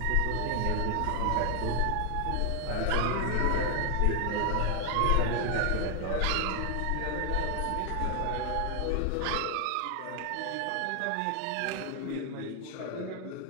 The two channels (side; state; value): both; different; correlation 0.01